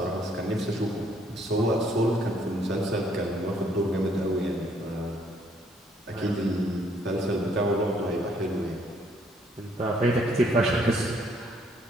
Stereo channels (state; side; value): normal; both; correlation 0.67